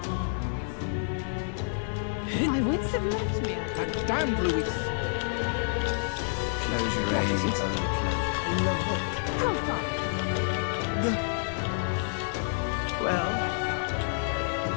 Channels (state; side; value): silent; right; digital silence